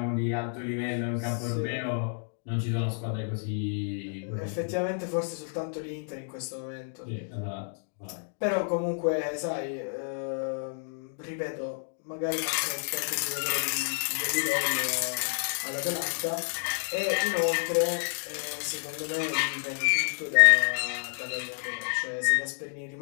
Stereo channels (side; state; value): right; silent; 58 dB below the other